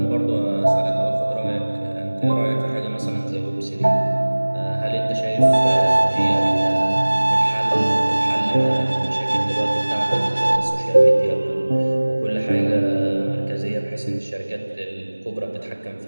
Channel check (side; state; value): both; inverted; correlation -1.00